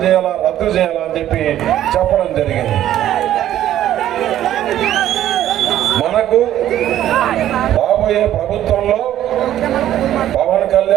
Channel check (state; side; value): quieter; left; 12.2 dB